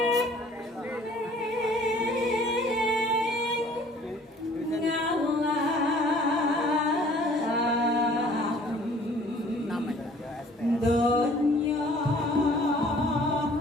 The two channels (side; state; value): both; normal; correlation 0.54